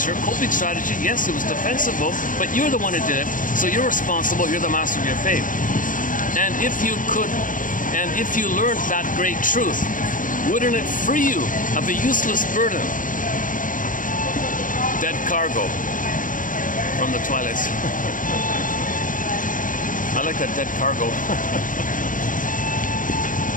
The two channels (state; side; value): late; right; 0.39 ms